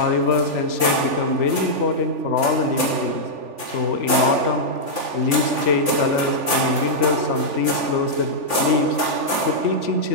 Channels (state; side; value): late; left; 3.4 ms